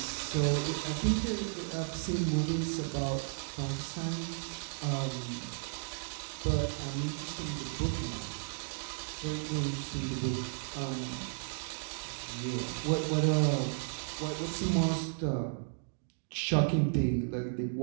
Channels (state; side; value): silent; left; digital silence